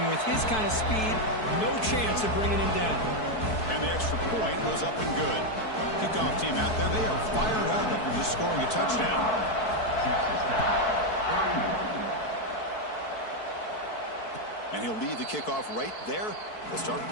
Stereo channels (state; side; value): late; right; 4.6 ms